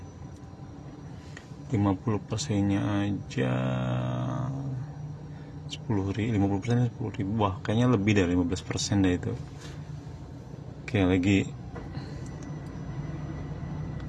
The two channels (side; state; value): both; identical; correlation 1.00